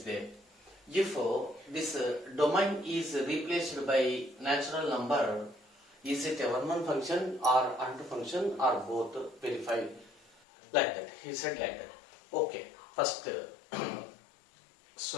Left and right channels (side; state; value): right; drops out; at 10.3 s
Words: there. If this domain is replaced by natural number, is it a 1 1 function or onto function or both? Verify like that. He said like that. Okay, first